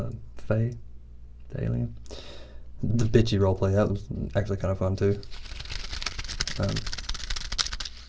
Faye, the alien. The bitchy role play, that was actually kind of fun too.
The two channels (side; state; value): both; identical; correlation 1.00